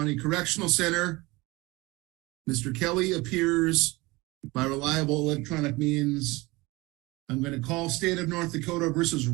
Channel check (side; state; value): left; quieter; 22.6 dB